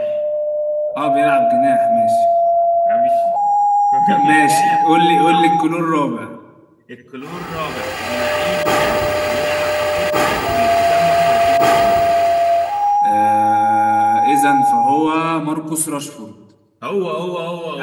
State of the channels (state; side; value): identical; both; correlation 1.00